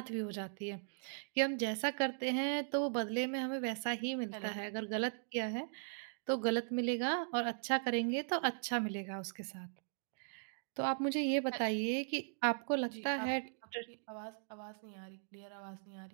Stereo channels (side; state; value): left; silent; digital silence